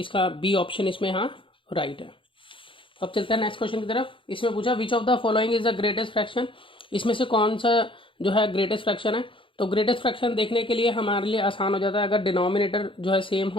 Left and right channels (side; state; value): right; late; 0.25 ms